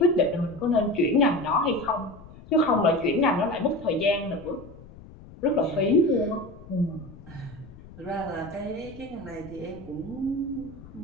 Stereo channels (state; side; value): noise; left; rumble, 18 dB below the sound